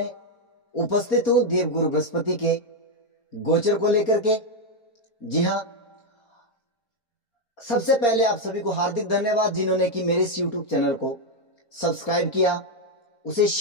उपस्थित हूं देवगुरु बृहस्पति के गोचर को लेकर के। जी हां, सबसे पहले आप सभी को हार्दिक धन्यवाद जिन्होंने कि मेरे इस YouTube चैनल को सब्सक्राइब किया, उसे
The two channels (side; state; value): right; late; 4.3 ms